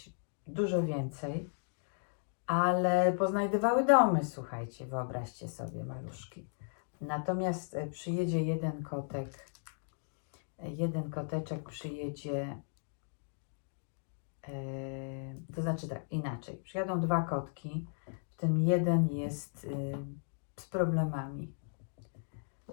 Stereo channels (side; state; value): right; silent; digital silence